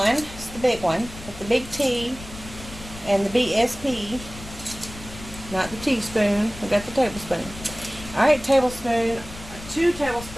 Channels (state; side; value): noise; left; rumble, 14 dB below the sound